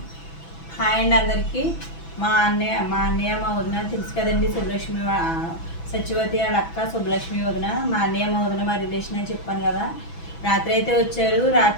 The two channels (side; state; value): right; late; 6.0 ms